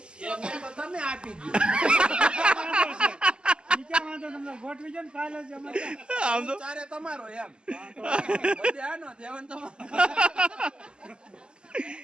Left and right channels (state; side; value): late; left; 0.049 ms